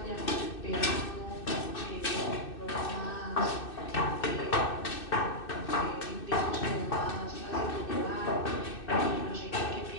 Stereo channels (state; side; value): late; right; 2.6 ms